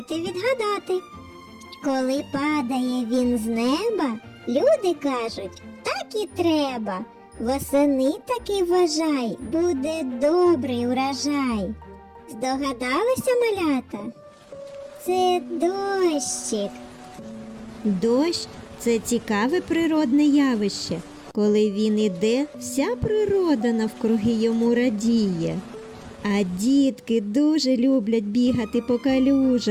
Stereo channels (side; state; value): both; identical; correlation 1.00